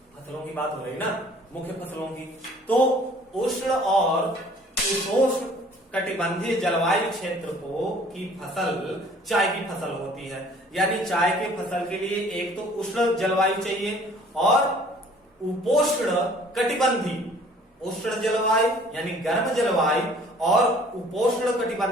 फसलों की बात हो रही ना, मुख्य फसलों की। तो उष्ण और उपोष्ण कटिबंधीय जलवायु क्षेत्र की फसल चाय की फसल होती है। यानी चाय के फसल के लिए एक तो उष्ण जलवायु चाहिए और उपोष्ण कटिबंधी, उष्ण जलवायु यानी गर्म जलवायु और उपोष्ण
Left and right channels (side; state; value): both; normal; correlation 0.54